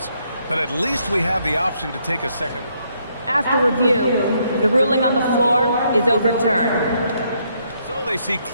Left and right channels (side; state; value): both; inverted; correlation -0.73